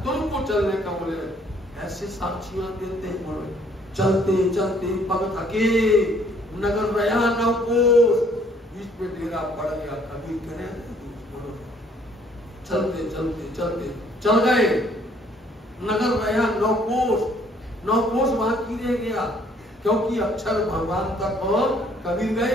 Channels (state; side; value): normal; both; correlation 0.62